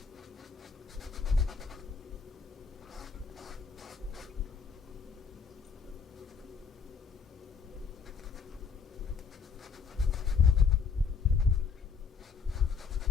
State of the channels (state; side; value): quieter; right; 5.7 dB